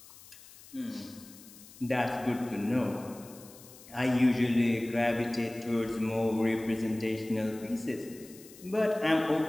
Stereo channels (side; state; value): left; noise; hiss, 20 dB below the sound